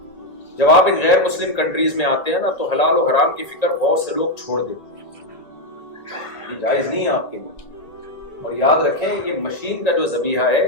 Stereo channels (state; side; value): late; right; 1.6 ms